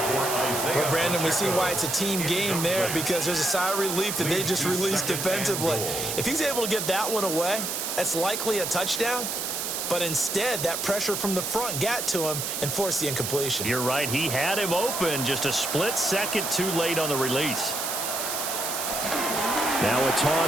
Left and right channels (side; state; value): right; noise; hiss, 3 dB below the sound